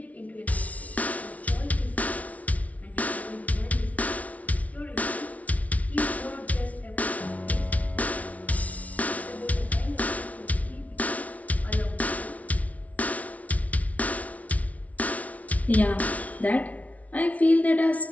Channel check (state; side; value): late; right; 0.069 ms